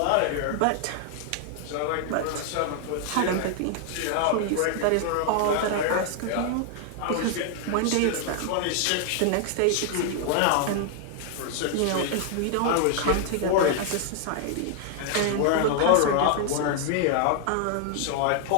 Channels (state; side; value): different; both; correlation 0.00